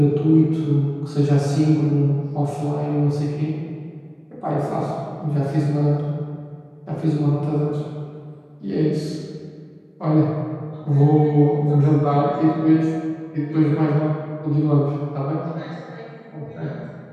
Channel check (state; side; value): identical; both; correlation 1.00